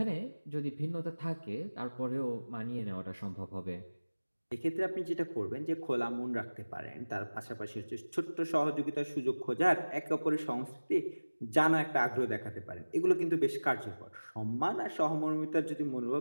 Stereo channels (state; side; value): inverted; both; correlation -1.00